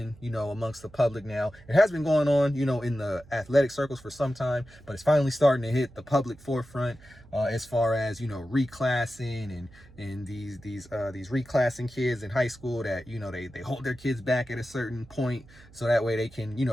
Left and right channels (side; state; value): right; noise; hum, 23 dB below the sound